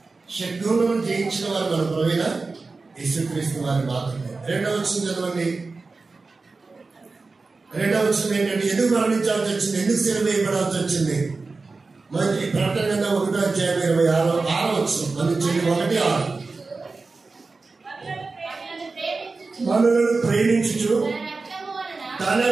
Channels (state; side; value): quieter; left; 3.9 dB